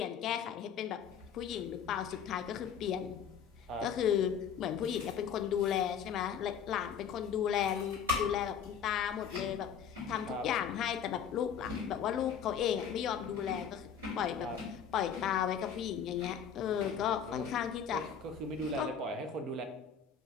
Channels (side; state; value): right; quieter; 7.6 dB